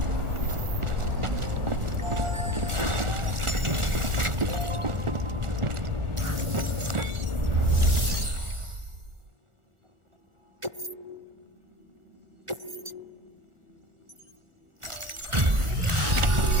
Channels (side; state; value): left; late; 1.4 ms